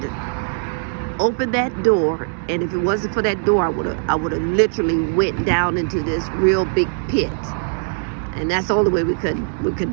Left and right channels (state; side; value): silent; left; digital silence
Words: opened that door. And if it wasn't for that door, I would have literally went down into this real big pit. And that's the only way we could